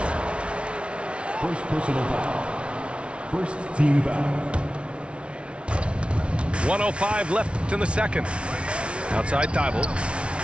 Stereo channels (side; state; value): left; late; 0.059 ms